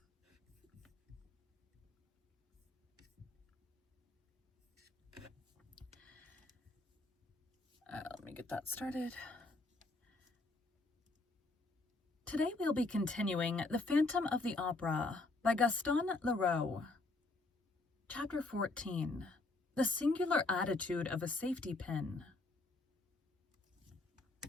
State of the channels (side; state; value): right; quieter; 3.2 dB